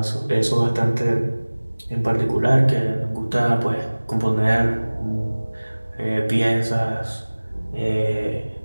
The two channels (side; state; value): both; inverted; correlation -1.00